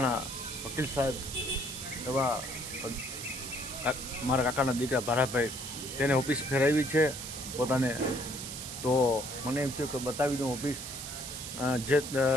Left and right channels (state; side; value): noise; right; hiss, 8 dB below the sound